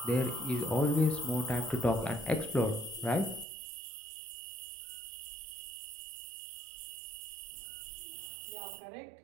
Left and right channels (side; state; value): left; drops out; at 3.5 s